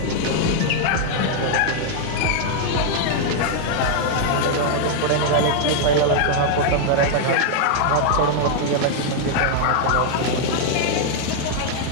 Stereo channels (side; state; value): both; different; correlation 0.00